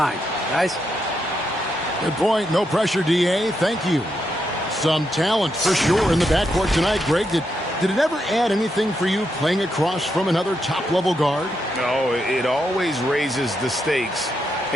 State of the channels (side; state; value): both; normal; correlation 0.82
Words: Guys? Good point. No pressure, DA. Thank you. Some talent for sure in the backcourt tonight. Greg, did it ever add anything for you playing across from another top-level guard? No, it always raises the stakes,